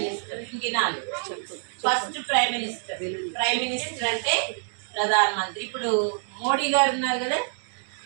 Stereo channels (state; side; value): silent; left; digital silence